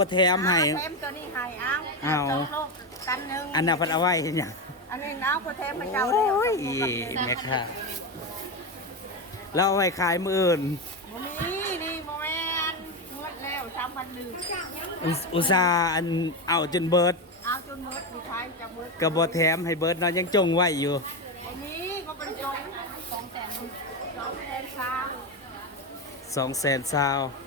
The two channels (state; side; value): normal; both; correlation 0.14